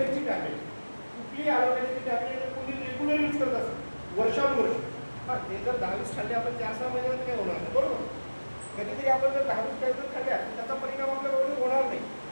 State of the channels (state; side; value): inverted; both; correlation -1.00